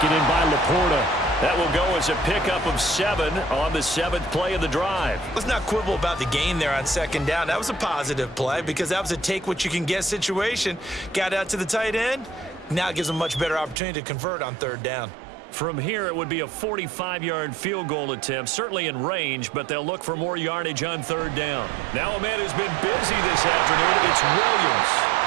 in by Laporta. That will go as a pickup of 7 on the 7th play of the drive. Let's not quibble about the gain there on 2nd down. That was a positive play because that was a take-what-you-can-get situation. Got out to the tight end. Now it gives them a much better opportunity to convert on 3rd down. From here, it would be a 45-yard field goal attempt, certainly in range, but they'll look for more yardage on 3rd down. Now a man who's been busy this afternoon, it's Williams.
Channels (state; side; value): drops out; left; at 13.8 s